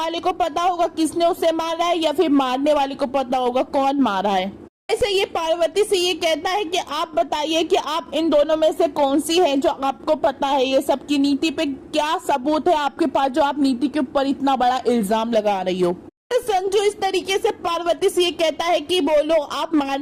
को पता होगा किसने उसे मारा है, या फिर मारने वाले को पता होगा कौन मारा है। ऐसे ये पार्वती से ये कहता है कि आप बताइए कि आप इन दोनों में से कौन सी है जो आपको पता है ये सब की नीति पे क्या सबूत है आपके पास जो आप नीति के ऊपर इतना बड़ा इल्जाम लगा रही हो। तो संजू इस तरीके से पार्वती से ये कहता है कि बोलो आप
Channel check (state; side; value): identical; both; correlation 1.00